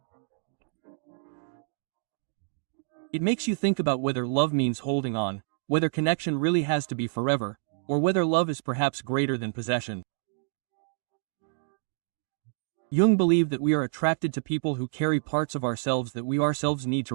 It makes you think about whether love means holding on, whether connection really has to be forever, or whether love is perhaps greater than possession. Jung believed that we are attracted to people who carry parts of ourselves that we ourselves need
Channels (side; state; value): left; silent; digital silence